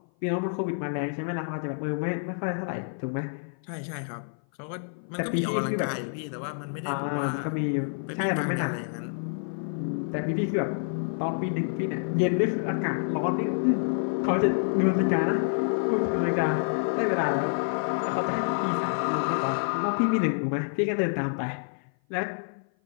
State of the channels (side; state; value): right; silent; 56 dB below the other